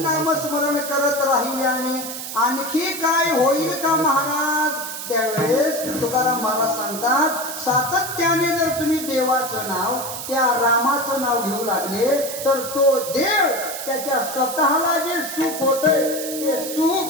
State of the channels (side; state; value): right; noise; hiss, 8 dB below the sound